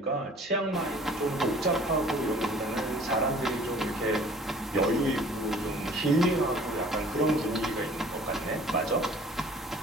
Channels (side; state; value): both; normal; correlation 0.51